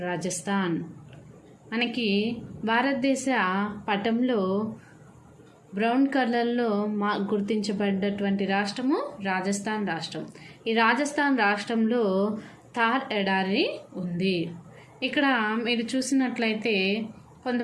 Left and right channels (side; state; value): both; identical; correlation 1.00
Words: Rajasthan. మనకి భారతదేశ పటంలో బ్రౌన్ కలర్లో గుర్తించబడ్డటువంటి రాష్ట్రము రాజస్థాన్ రాష్ట్రం. ఈ రాజస్థాన్ రాష్ట్రంలో థార్ ఎడారి ఉంది. ఇక్కడ మీరు చూసినట్లయితే